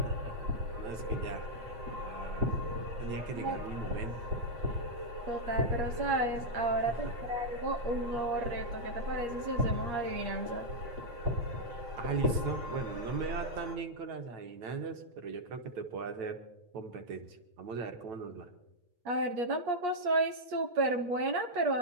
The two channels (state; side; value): late; left; 9.0 ms